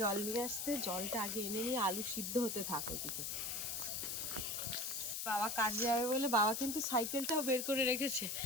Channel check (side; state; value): left; noise; hiss, 3 dB below the sound